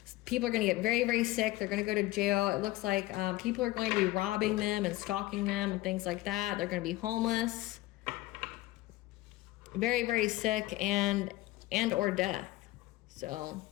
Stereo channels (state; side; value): quieter; right; 18.1 dB